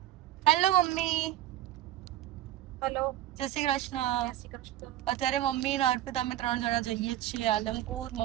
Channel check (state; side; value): quieter; left; 13.5 dB